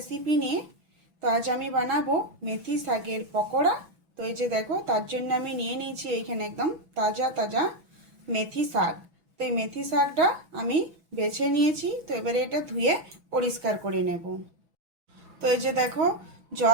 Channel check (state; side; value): late; left; 6.1 ms